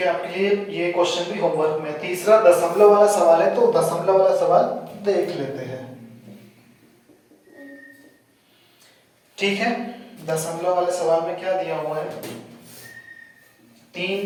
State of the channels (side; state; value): both; identical; correlation 1.00